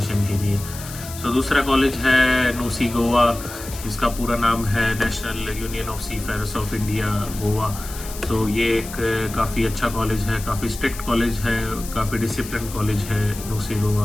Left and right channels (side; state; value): left; noise; hiss, 13 dB below the sound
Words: के लिए। सो दूसरा कॉलेज है नूसी गोवा, इसका पूरा नाम है national union of seafarers of India Goa. तो ये एक काफ़ी अच्छा कॉलेज है, काफ़ी स्ट्रिक्ट कॉलेज है, काफ़ी डिसिप्लिन कॉलेज है नूसी